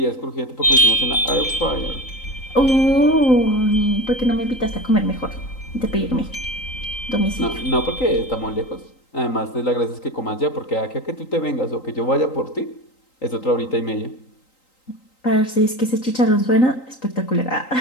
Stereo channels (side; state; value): right; late; 3.9 ms